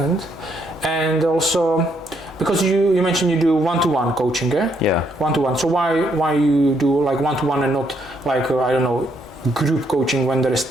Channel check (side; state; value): both; normal; correlation 0.73